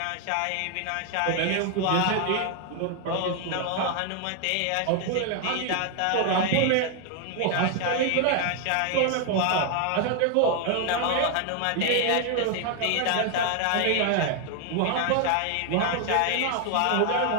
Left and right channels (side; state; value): both; different; correlation 0.00